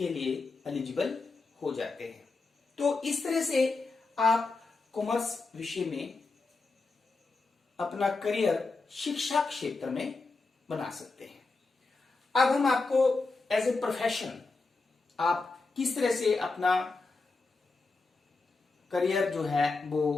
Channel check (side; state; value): right; quieter; 3.8 dB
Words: लिए एलिजिबल हो जाते हैं। तो इस तरह से आप कॉमर्स विषय में अपना करियर शिक्षा क्षेत्र में बना सकते हैं। अब हम आपको एज ए प्रोफेशन आप किस तरह से अपना करियर जो है वो